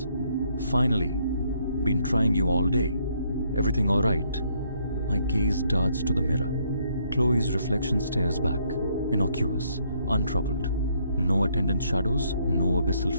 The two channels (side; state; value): both; inverted; correlation -0.70